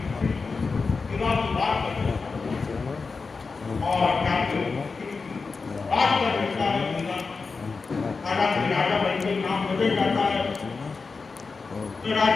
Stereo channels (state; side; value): quieter; right; 4.5 dB